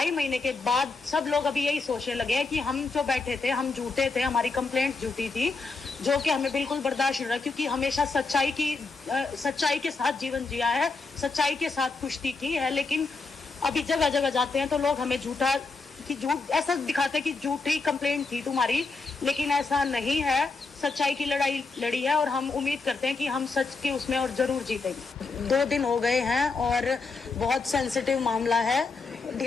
महीने के बाद सब लोग अभी यही सोचने लगे हैं कि हम जो बैठे थे हम झूठे थे, हमारी कंप्लेंट झूठी थी, जो कि हमें बिल्कुल बर्दाश्त नहीं रहा। क्योंकि हमेशा सच्चाई के साथ जीवन जिया है, सच्चाई के साथ कुश्ती की है। लेकिन अभी जगह जगह जाते हैं तो लोग हमें झूठ ऐसा दिखाते हैं कि झूठी कंप्लेंट थी तुम्हारी, लेकिन ऐसा नहीं है। सच्चाई की लड़ाई लड़ी है और हम उम्मीद करते हैं कि हम सच के उसमें और जरूर जीतेंगे। 2 दिन हो गए हैं और बहुत सेंसिटिव मामला है,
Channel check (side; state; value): right; quieter; 4.0 dB